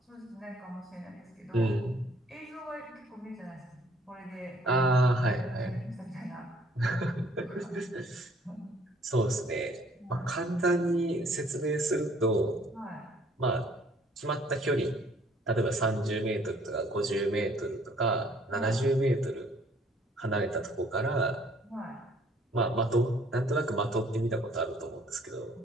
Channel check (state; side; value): normal; both; correlation 0.60